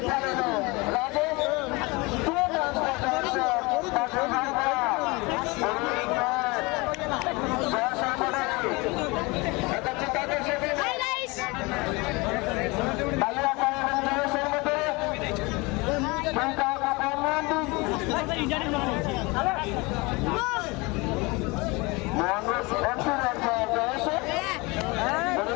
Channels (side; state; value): right; quieter; 25.4 dB